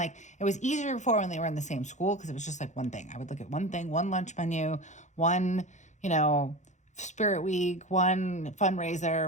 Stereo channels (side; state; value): right; late; 0.35 ms